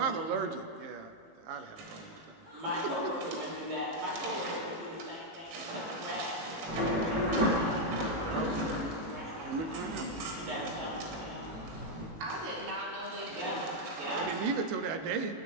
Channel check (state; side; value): late; left; 18 ms